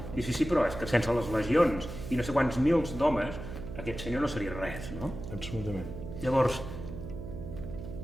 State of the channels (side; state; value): right; noise; hum, 9 dB below the sound